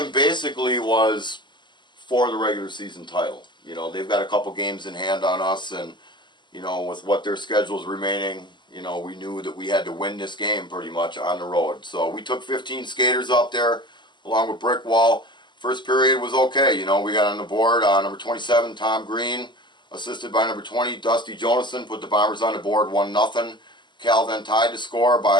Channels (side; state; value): right; late; 0.22 ms